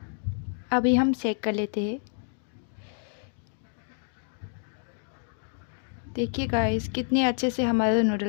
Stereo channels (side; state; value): right; silent; 59 dB below the other